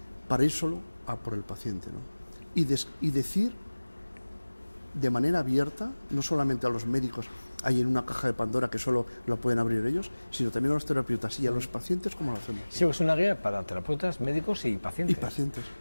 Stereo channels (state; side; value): inverted; both; correlation -1.00